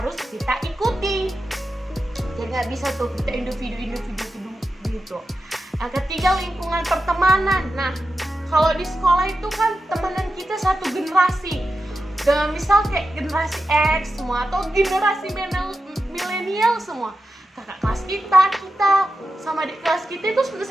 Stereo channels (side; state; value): both; normal; correlation 0.91